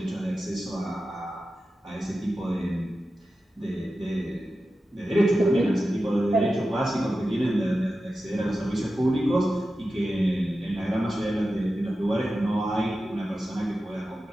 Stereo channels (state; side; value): normal; both; correlation 0.92